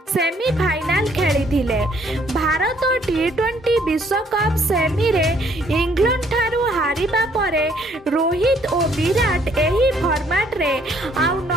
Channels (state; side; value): normal; both; correlation 0.64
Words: सेमीफाइनाल खेलिथिले। भारत टी20 विश्वकप सेमी रे इंग्लैंड ठारू हारिबा परे रोहित और विराट एही फॉर्मेट रे आउ